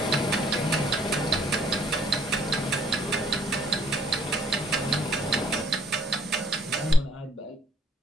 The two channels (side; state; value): both; normal; correlation 0.61